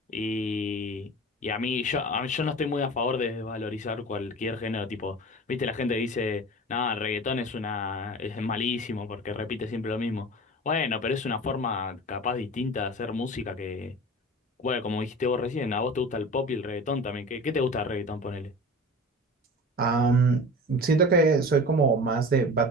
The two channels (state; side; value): normal; both; correlation 0.35